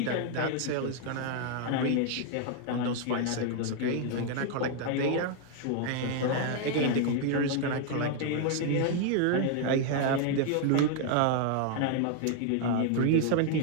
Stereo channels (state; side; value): different; both; correlation 0.00